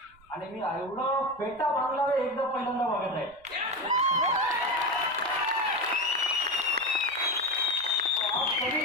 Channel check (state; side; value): noise; right; rumble, 29 dB below the sound